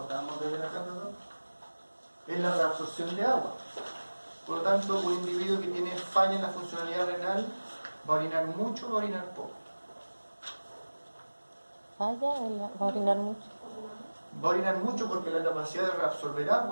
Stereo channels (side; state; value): both; inverted; correlation -1.00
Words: acabamos de ver acá, perdón, es la reabsorción de agua. Por lo tanto, un individuo que tiene falla en la funcionalidad renal va a orinar mucho o va a orinar poco. Falla, va a orinar mucho. Va a orinar mucho porque la capacidad de reabsorber